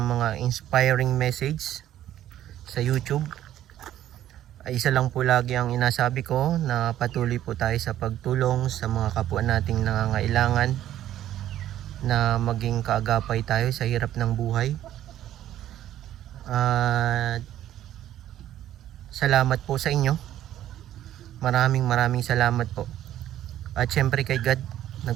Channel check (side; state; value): left; quieter; 12.3 dB